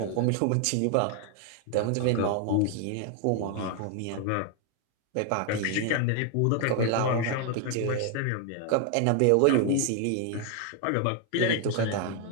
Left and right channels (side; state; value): both; different; correlation 0.01